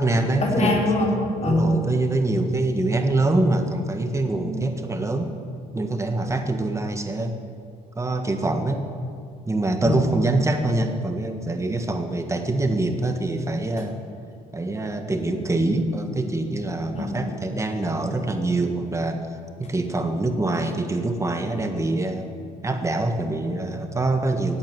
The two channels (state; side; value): normal; both; correlation 0.78